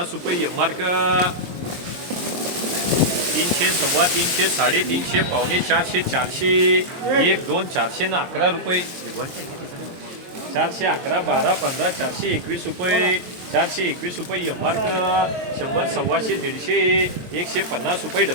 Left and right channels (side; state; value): left; late; 23 ms